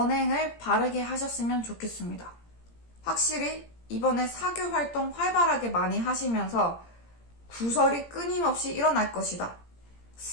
바르게 하셨으면 좋겠습니다. 확실히 이번에 사교 활동 활발하게 많이 하시면서 구설이 끊임없이 일어날 것이다.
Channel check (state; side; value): late; right; 17 ms